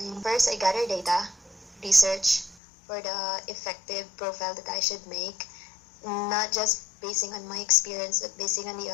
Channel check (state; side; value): drops out; right; at 2.6 s